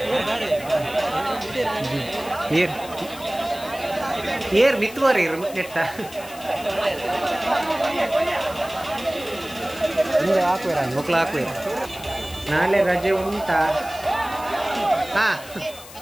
ಏರ್ ಮಿತ್ತುವರಿ ನೆಟ್ಟ ಮುಂದೆ ಹಾಕುವ ಮಕ್ಕಳು ಹಾಕುವ ನಾಳೆ ರಜೆ ಉಂಟಾ ಹಾ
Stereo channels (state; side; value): noise; left; hiss, 17 dB below the sound